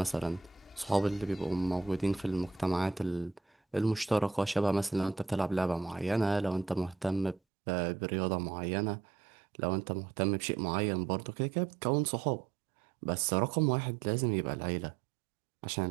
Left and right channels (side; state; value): left; drops out; at 7.4 s